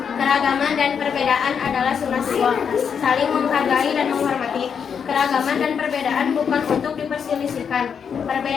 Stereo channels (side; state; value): right; quieter; 7.0 dB